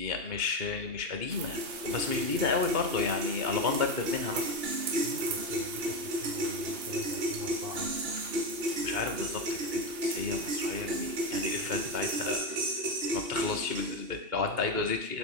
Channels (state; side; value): late; left; 2.8 ms